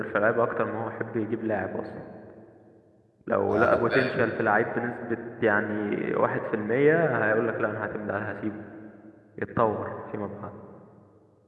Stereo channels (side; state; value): both; identical; correlation 1.00